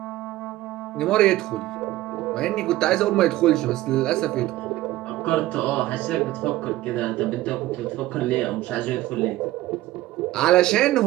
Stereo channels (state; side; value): quieter; left; 16.3 dB